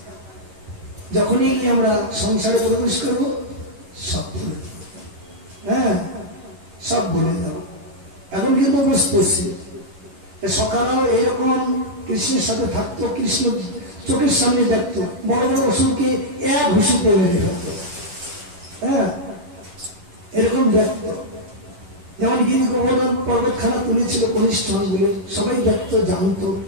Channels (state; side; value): late; left; 11 ms